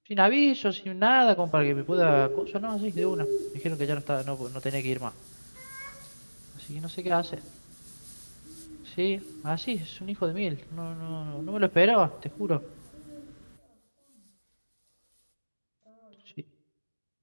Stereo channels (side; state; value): both; inverted; correlation -1.00